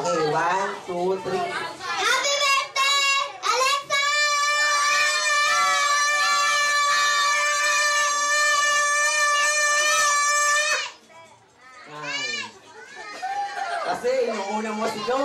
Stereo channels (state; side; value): identical; both; correlation 1.00